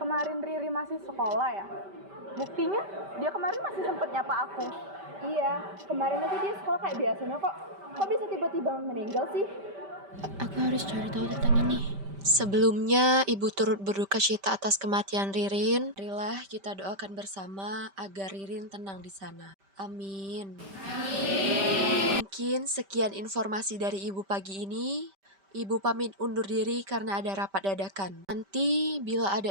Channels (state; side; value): late; left; 5.1 ms